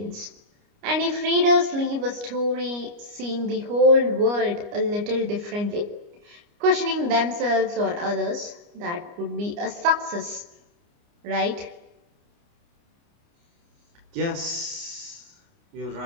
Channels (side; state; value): left; late; 29 ms